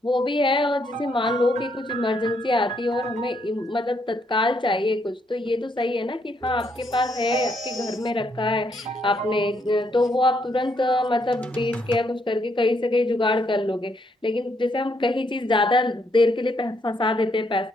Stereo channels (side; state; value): both; normal; correlation 0.74